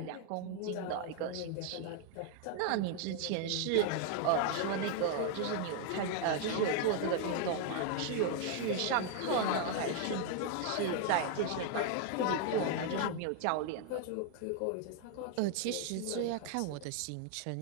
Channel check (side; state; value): both; different; correlation 0.00